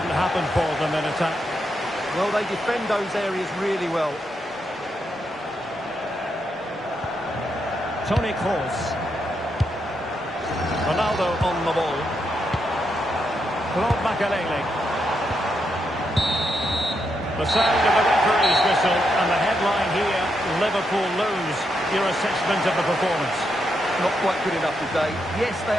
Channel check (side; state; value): both; normal; correlation 0.81